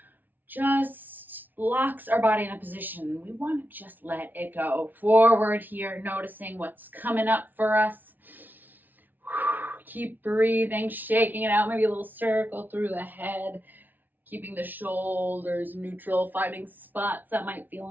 Just locks our body in a position. We want to just let it go. Forward here, noticing what's coming up for us. Keep breathing, shaking it out, maybe a little circle through the head, keeping the shoulders neutral, finding spots that might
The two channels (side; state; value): left; late; 0.085 ms